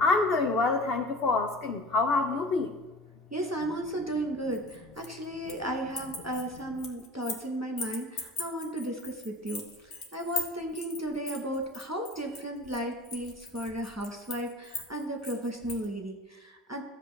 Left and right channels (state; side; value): normal; both; correlation 0.40